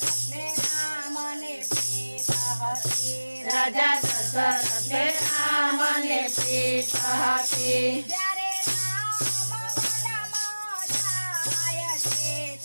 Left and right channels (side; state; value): both; inverted; correlation -1.00